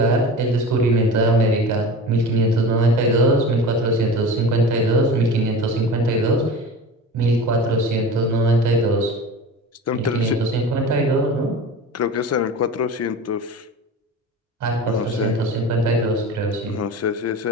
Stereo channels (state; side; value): normal; both; correlation 0.33